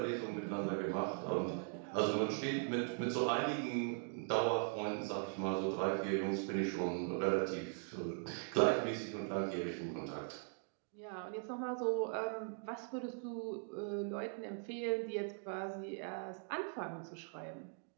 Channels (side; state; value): left; silent; 51 dB below the other